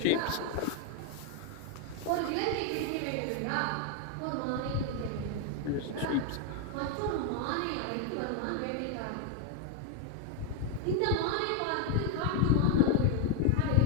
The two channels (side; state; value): both; different; correlation 0.01